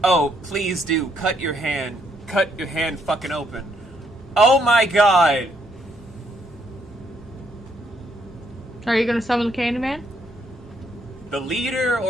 Oh, please do. Cut your hand. Cut your hand fucking open. Oh my god! Are you gonna summon the Candyman? The leader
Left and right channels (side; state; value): both; normal; correlation 0.72